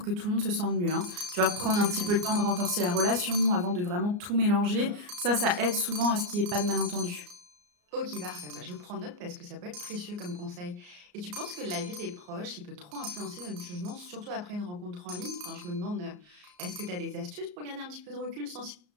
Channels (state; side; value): late; left; 34 ms